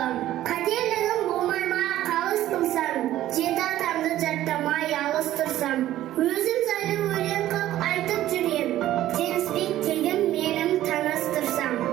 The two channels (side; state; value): left; quieter; 13.7 dB